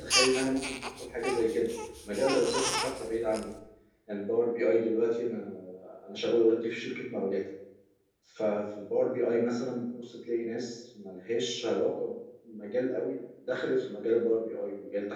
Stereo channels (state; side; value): identical; both; correlation 1.00